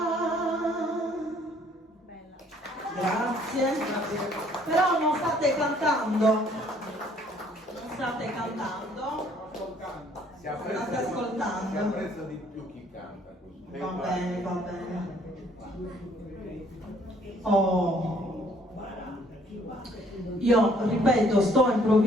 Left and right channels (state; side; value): normal; both; correlation 0.61